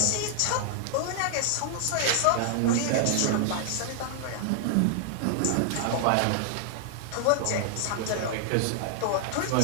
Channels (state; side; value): different; both; correlation 0.00